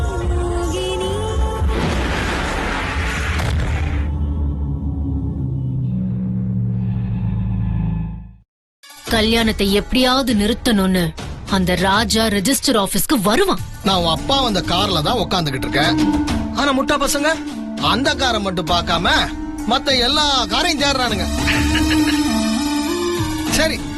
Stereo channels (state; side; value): identical; both; correlation 1.00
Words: மோகினி. கல்யாணத்தை எப்படியாவது நிறுத்தணும்னு அந்த ராஜா ரெஜிஸ்டர் ஆபீஸ்க்கு வருவான். நான் உன் அப்பா வந்த கார்ல தான் உட்காந்துக்கிட்டு இருக்கேன். ஆனா முட்டா பசங்க அந்த காரை மட்டும் பார்க்காம மத்த எல்லா காரையும் தேடுறானுங்க. சரி,